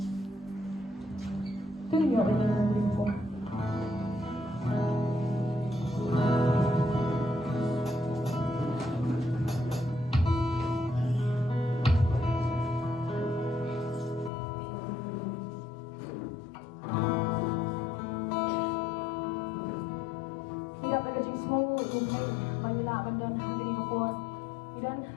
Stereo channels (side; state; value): right; drops out; at 14.3 s